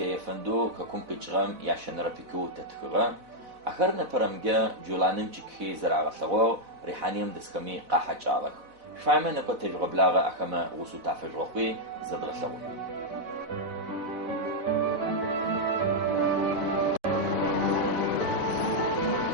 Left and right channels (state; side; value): late; left; 4.0 ms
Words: يفندو ككم كجرم ياشن ربيكو تتخغا آخر نبرمجي جولانم تشكي زرع غسغو ريحانيم دسكمي قاحة جالك شفايمة نبا تجرب لاغا أخما وسو تافجروخي زد غسغو